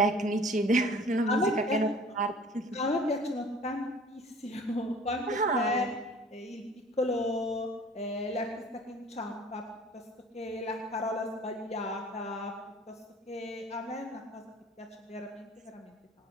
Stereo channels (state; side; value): normal; both; correlation 0.48